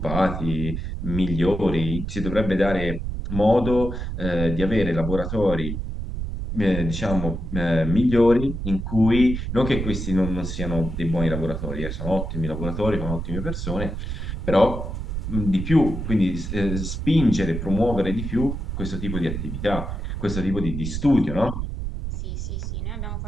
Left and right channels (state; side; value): noise; right; rumble, 4 dB below the sound